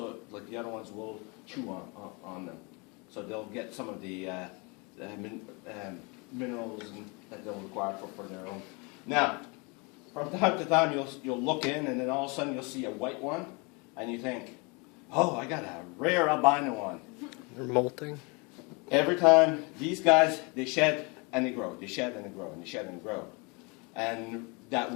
like the other ones, will chew on them. So they'll get some of the minerals that they'll require for their own. Now, from time to time, you'll look in, and then all of a sudden you'll see a white one, and you think, oh, I got a rare albino one. They're molting. Every time, these guys, they shed and they grow. They shed and they grow, and they shed and they grow. And that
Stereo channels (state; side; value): quieter; right; 30.1 dB